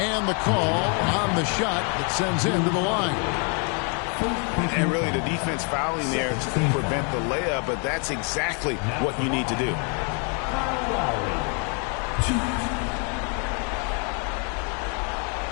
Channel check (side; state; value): right; quieter; 37.9 dB